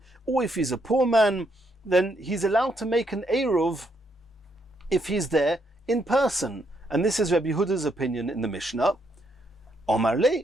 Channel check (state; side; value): normal; both; correlation 0.75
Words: or if he's a poor man. Then he's allowed to make an Eruv if he's there in person. And this is Rabbi Yehuda's opinion in the Mishnah. Omar le